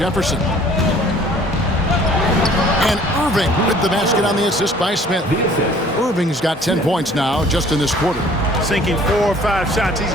And Irving with the basket on the assist by Smith. Irving's got 10 points now just in this quarter. Sinking 4 or 5 shots, he's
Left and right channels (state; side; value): normal; both; correlation 0.54